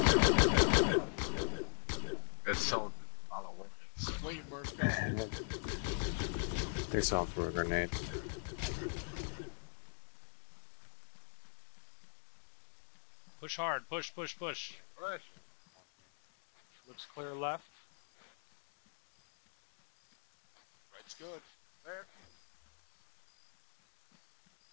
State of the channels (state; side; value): silent; right; digital silence